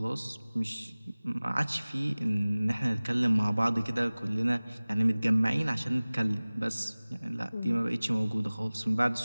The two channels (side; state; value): both; inverted; correlation -0.99